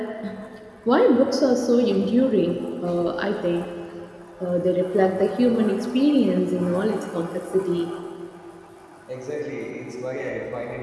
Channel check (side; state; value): both; identical; correlation 1.00